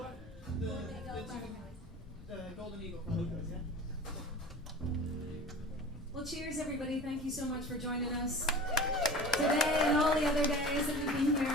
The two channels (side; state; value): both; normal; correlation 0.38